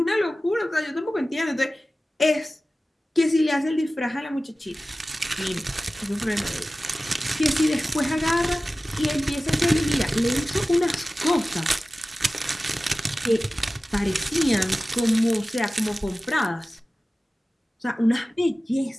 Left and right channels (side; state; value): both; normal; correlation 0.96